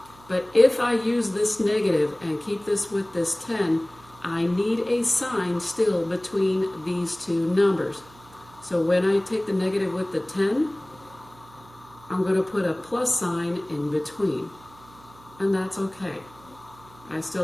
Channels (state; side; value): noise; right; hum, 25 dB below the sound